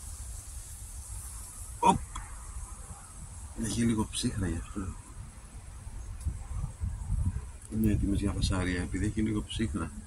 Οπ! Έχει λίγο ψύχρα γι' αυτό. Είναι έτοιμες για φασαρία, επειδή έχει λίγο ψύχρα.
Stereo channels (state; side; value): identical; both; correlation 1.00